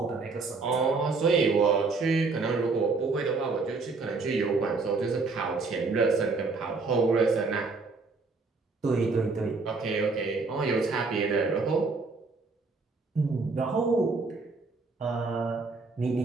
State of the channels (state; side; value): quieter; left; 4.1 dB